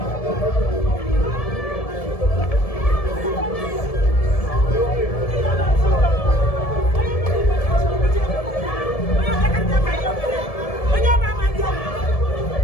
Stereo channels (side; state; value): right; late; 1.7 ms